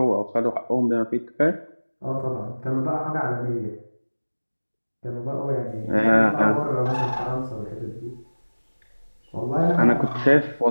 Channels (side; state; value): both; inverted; correlation -1.00